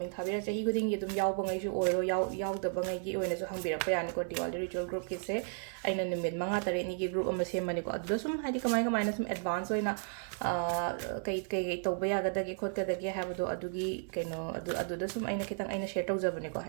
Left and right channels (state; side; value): silent; left; 55 dB below the other